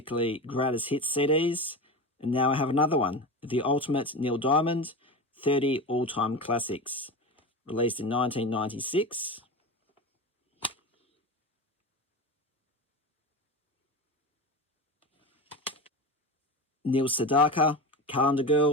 Greatest Hits CDs, and now I have another one, The Ultimate Neil Diamond 30 All-Time Classics, released in 1996. Neil Sedaka, Calendar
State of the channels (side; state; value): both; normal; correlation 0.25